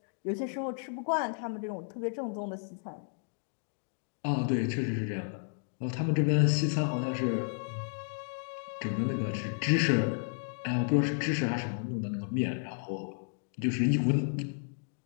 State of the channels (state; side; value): silent; right; 56 dB below the other